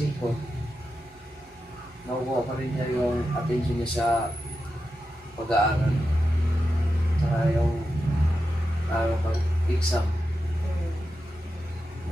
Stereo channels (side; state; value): both; normal; correlation 0.89